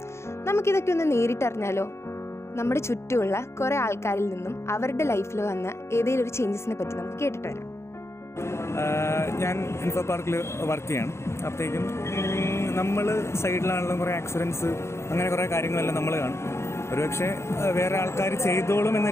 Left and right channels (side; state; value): right; late; 0.13 ms